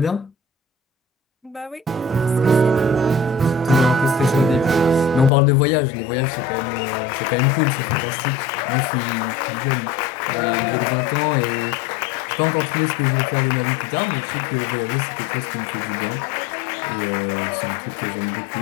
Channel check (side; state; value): right; drops out; at 5.3 s